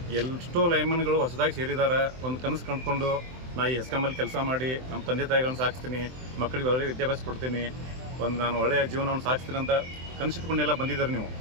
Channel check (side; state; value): left; late; 23 ms